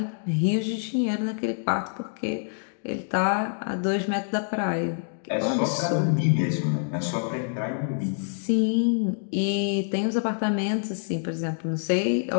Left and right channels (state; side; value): silent; right; digital silence